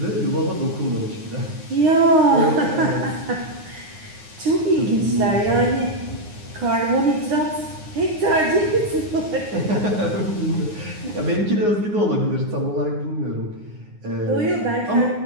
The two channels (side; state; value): left; late; 9.6 ms